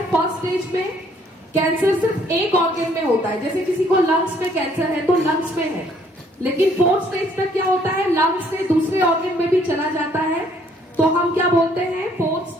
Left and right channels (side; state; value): both; normal; correlation 0.64